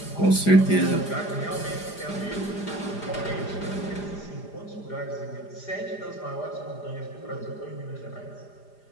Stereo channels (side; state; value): right; late; 4.9 ms